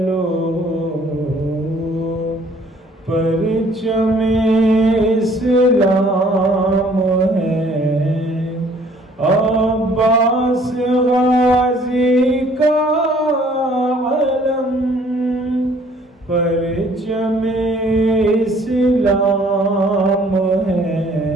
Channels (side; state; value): both; normal; correlation 0.58